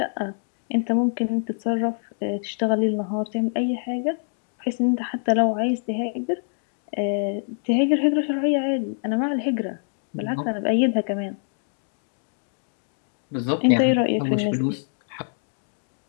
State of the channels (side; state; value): right; silent; digital silence